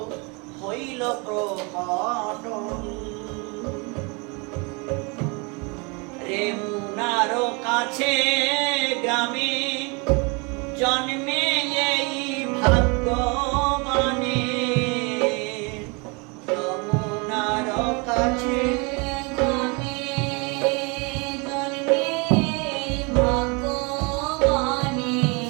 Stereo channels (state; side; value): quieter; left; 30.6 dB